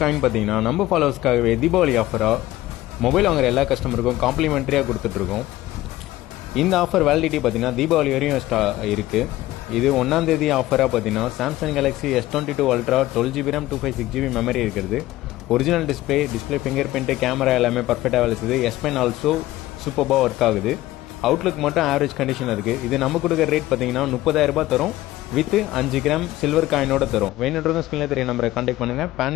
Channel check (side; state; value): right; quieter; 16.4 dB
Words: காயின் பார்த்தீங்கன்னா நம்ம ஃபாலோவர்ஸ்க்காகவே தீபாவளி ஆஃபராக மொபைல் வாங்குற எல்லா கஸ்டமருக்கும் காம்ப்ளிமெண்ட்ரியாக கொடுத்துட்ருக்கோம். இந்த ஆஃபர் வேலிடிட்டி பார்த்தீங்கன்னா தீபாவளி வரையும் இருக்குது. இது 1ஆம் தேதி ஆஃபராக பார்த்தீங்கன்னா Samsung Galaxy S22 ultra 12GB RAM 256GB memory இருக்கிறது. Original display fingerprint camera எல்லாமே பர்ஃபெக்டாக வேலை செய்யுது. S Pen ஆல்சோ சூப்பராக ஒர்க் ஆகுது. அவுட்லுக் மட்டும் ஆவரேஜ் கண்டிஷன் இருக்குது. இது நம்ம கொடுக்குற ரேட் பார்த்தீங்கன்னா 30,000 தரும் வித் 5 கிராம் சில்வர் காயினோட தரும். வேணுன்றதும் ஸ்கிரீனில் தெரிய நம்பரை கான்டாக்ட் பண்ணுங்கள். பேன்